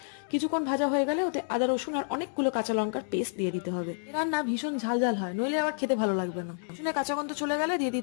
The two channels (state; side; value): silent; right; digital silence